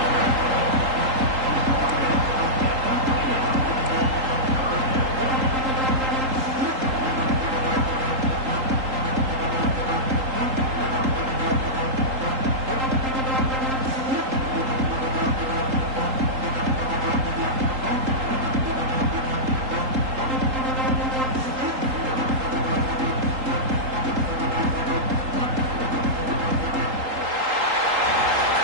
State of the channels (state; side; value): late; left; 3.8 ms